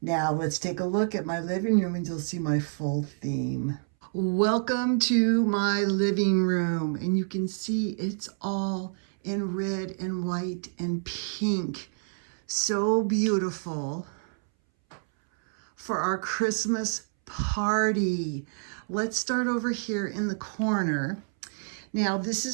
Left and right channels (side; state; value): left; silent; 59 dB below the other